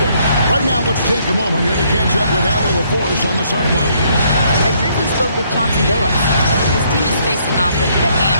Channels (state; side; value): inverted; both; correlation -0.68